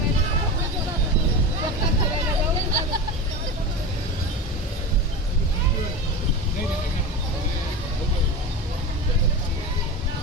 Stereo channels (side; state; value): both; normal; correlation 0.25